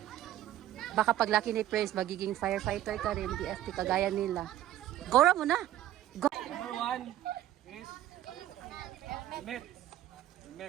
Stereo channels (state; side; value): quieter; left; 13.2 dB